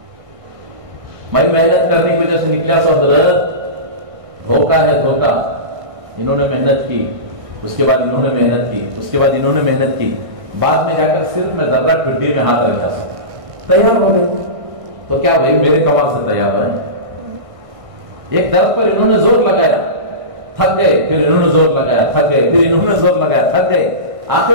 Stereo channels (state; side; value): late; left; 1.6 ms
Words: میں محنت کرنے کی وجہ سے نکلا سو حضرت دھوکہ ہے دھوکہ. انہوں نے محنت کی, اس کے بعد انہوں نے محنت کی, اس کے بعد انہوں نے محنت کی, بعد میں جا کر صرف میں ذرہ ٹھڈی میں ہاتھ رکھا سا تیار ہو گئے. تو کیا بھائی میرے کمال سے تیار ہے؟ ایک درخت پر انہوں نے زور لگایا, تھک گئے, پھر انہوں نے زور لگایا, تھک گئے, پھر انہوں نے زور لگایا, تھک گئے,